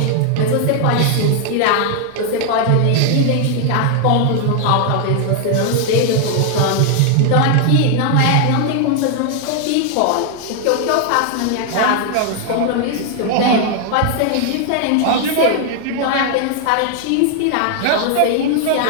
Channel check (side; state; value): both; different; correlation 0.00